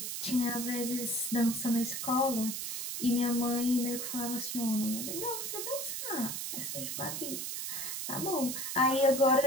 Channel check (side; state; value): right; noise; hiss, 4 dB below the sound